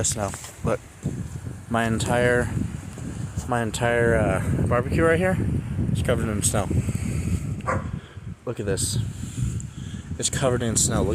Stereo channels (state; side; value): identical; both; correlation 1.00